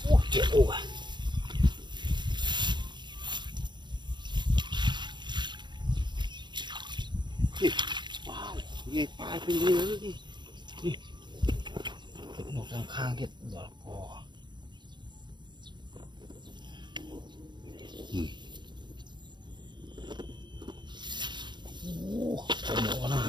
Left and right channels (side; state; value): left; late; 0.22 ms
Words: ôi chết ôi wow nghe phải bên dưới nữa đi một thằng khang kia đỏ cò không có nào